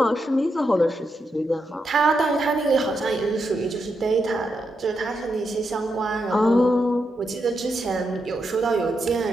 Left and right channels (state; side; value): normal; both; correlation 0.84